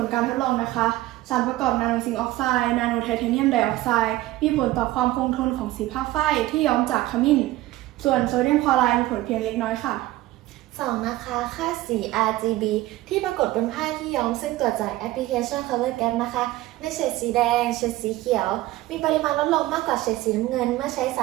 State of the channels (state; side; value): quieter; left; 16.9 dB